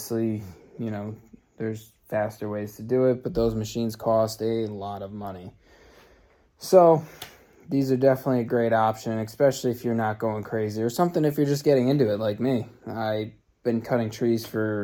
you know, there's faster ways to do it, but those machines cost a lot of money. So these are definitely a great option, especially if you're not going crazy, or something if you're just getting into it like me. I've been cutting trees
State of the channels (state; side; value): identical; both; correlation 1.00